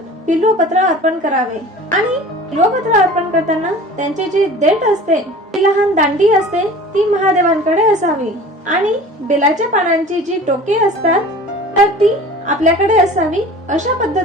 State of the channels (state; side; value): normal; both; correlation 0.41